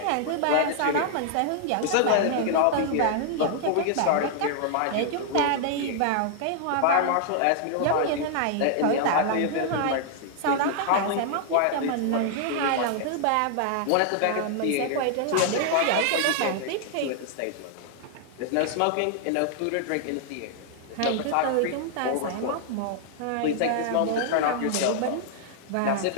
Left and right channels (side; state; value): both; different; correlation -0.01